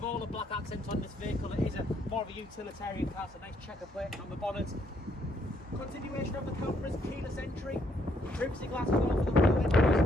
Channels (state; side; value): normal; both; correlation 0.71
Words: all the black accents on this vehicle. It is more of a utilitarian car, so nice checker plate on the bonnet. Continuation of the cameras, keyless entry, privacy glass as well for the rear windows.